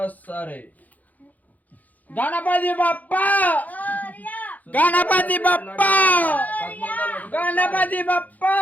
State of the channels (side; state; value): right; late; 0.079 ms